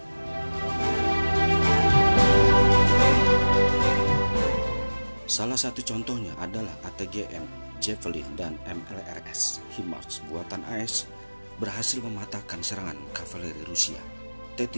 Salah satu contohnya adalah ATGM, Javelin, dan MLRS HIMARS buatan AS berhasil mematahkan serangan kavaleri Rusia.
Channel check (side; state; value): both; inverted; correlation -1.00